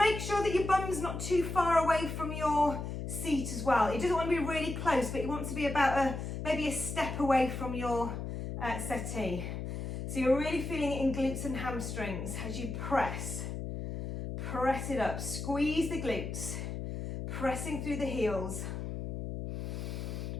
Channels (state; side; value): noise; left; hum, 5 dB below the sound